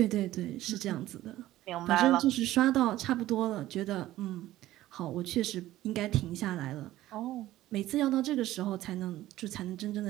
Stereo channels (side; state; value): left; quieter; 15.1 dB